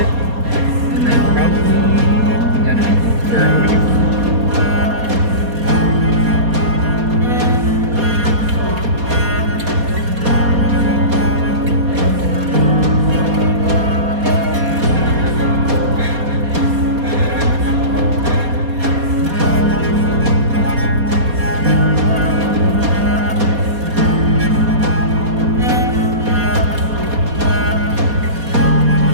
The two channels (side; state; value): left; late; 4.2 ms